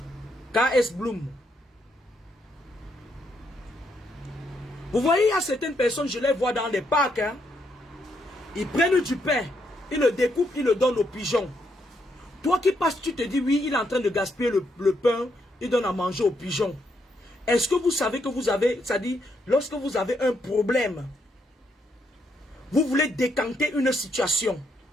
KS Bloom. Vous voyez, il y a certaines personnes, je les vois dans les parcs. Hein, ils prennent du pain, ils le découpent, ils le donnent aux pigeons. Toi qui passes, tu te dis, oui, il est en train de gaspiller le pain, il donne à manger aux pigeons. Est-ce que vous savez que vous avez, c'est-à-dire, lorsque vous avez un problème, vous voulez décanter une situation,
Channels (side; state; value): both; normal; correlation 0.77